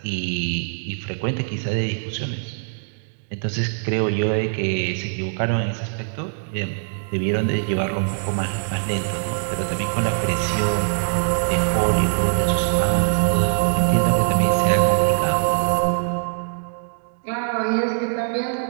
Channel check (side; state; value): left; silent; digital silence